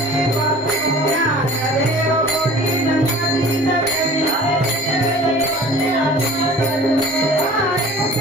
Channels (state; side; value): normal; both; correlation 0.44